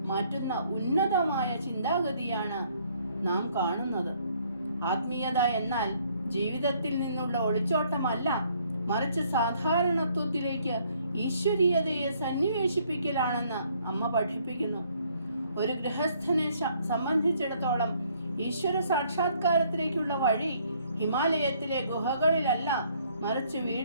മാറ്റുന്ന ഉന്നതമായ ചിന്താഗതിയാണ് നാം കാണുന്നത്. ആത്മീയത എന്നാൽ ജീവിതത്തിൽ നിന്നുള്ള ഒളിച്ചോട്ടമല്ല, മറിച്ച് സാധാരണത്വത്തിലേക്ക് ഈശ്വരീയതയെ സന്നിവേശിപ്പിക്കലാണെന്ന് അമ്മ പഠിപ്പിക്കുന്നു. ഒരു ഗൃഹസ്ഥനെ സംബന്ധിച്ചിടത്തോളം ഈശ്വര സാക്ഷാത്കാരത്തിലേക്കുള്ള വഴി ഹിമാലയത്തിലെ ഗുഹകളിലല്ല, മറിച്ച്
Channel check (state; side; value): inverted; both; correlation -0.65